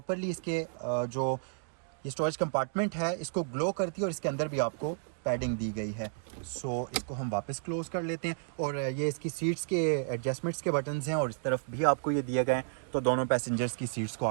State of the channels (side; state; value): left; silent; digital silence